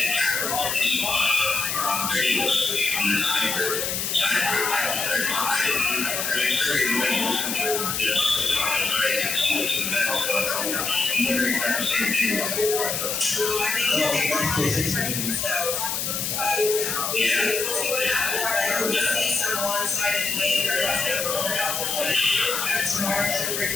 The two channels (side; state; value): left; noise; hiss, 1 dB below the sound